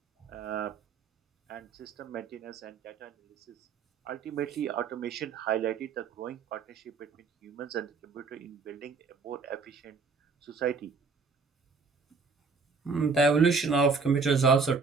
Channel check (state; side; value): quieter; left; 4.8 dB